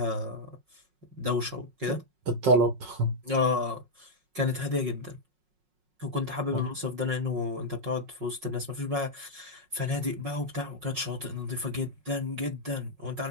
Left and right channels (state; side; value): late; left; 5.5 ms